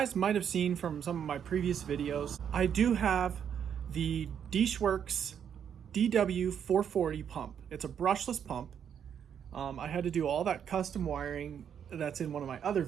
might have seen from some of my previous videos, I do have the Deeshworks DW440 pump. It's a brushless pump. I had to do all that custom wiring that's in one of my other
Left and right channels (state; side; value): quieter; left; 8.4 dB